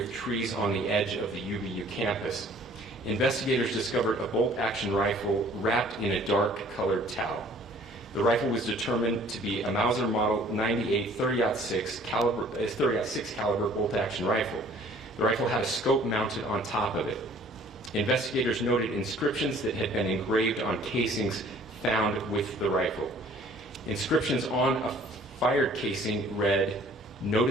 trees on the edge of the UVU campus. investigators discovered a bolt-action rifle wrapped in a dark-colored towel. The rifle was determined to be a Mauser Model 98 30-06 caliber bolt-action rifle. The rifle had a scope mounted on top of it. Investigators noted inscriptions that had been engraved on casings found with the rifle. Inscriptions on a fired casing read,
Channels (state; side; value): normal; both; correlation 0.54